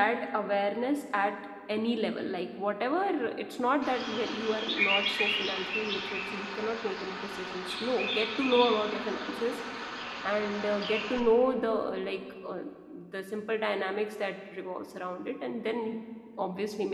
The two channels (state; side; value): identical; both; correlation 1.00